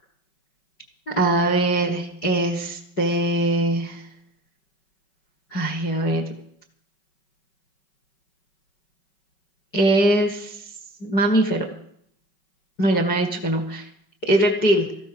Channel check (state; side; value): late; right; 5.3 ms